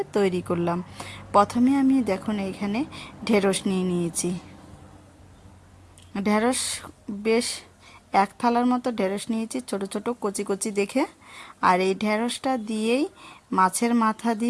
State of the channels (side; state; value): both; identical; correlation 1.00